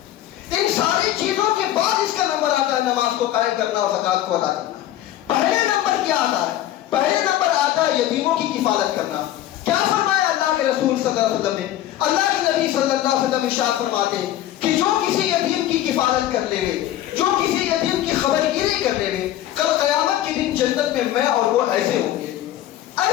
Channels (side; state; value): right; quieter; 13.0 dB